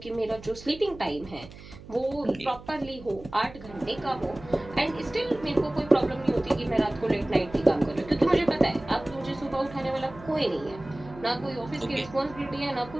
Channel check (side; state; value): right; noise; hum, 17 dB below the sound